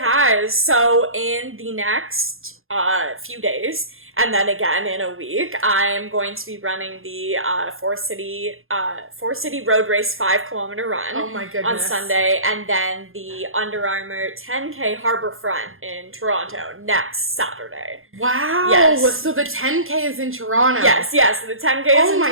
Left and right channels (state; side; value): late; left; 0.60 ms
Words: So in the next few days, and then again in a week, I am going to be running the Four City Road Race 5-kilometer run. Oh my goodness. On Sunday, and then the Under Armour 10K Harbourfront in Toronto next Saturday. Wow. Yes. So the 10K is in Toronto. Yes. So the 10K is in Toronto. Oh